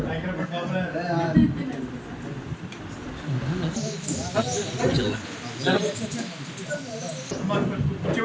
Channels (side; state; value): both; identical; correlation 1.00